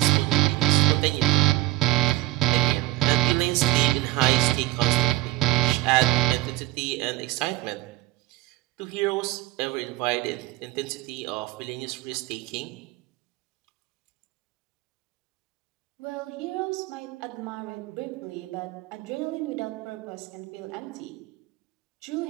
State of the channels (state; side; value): quieter; left; 18.2 dB